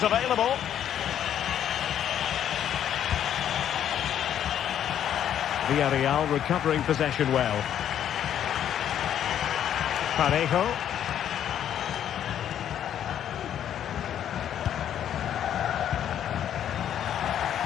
available. Villarreal recovering possession well. Parejo.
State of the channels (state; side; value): quieter; right; 10.1 dB